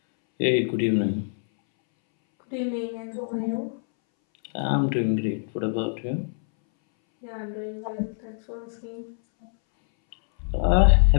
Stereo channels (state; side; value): silent; right; 62 dB below the other